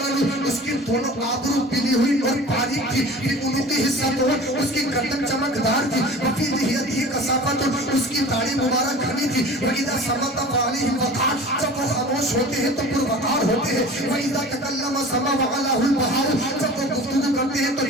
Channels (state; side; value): normal; both; correlation 0.41